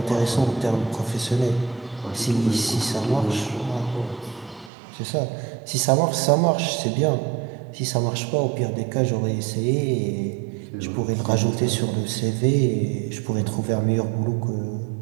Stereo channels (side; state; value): left; drops out; at 4.7 s